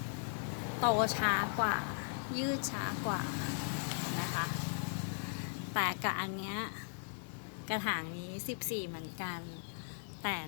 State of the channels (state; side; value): silent; right; digital silence